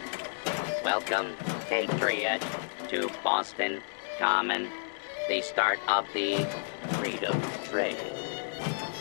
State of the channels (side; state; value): right; silent; digital silence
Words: Welcome, Patriot, to Boston Common, the start of the Freedom Trail.